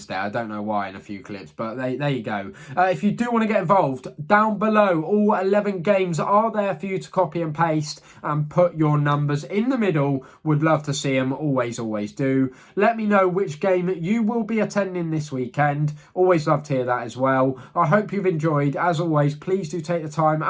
I don't know why in a few clips, but there you go. If you do want to get involved, down below, all 11 games are there for you to copy and paste and put your numbers in the middle. Would love to see them. Always, always do. Let me know which game you will be attending this weekend. Always love to hear that as well. I hope you've enjoyed. As always, please do take the time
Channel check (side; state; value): both; identical; correlation 1.00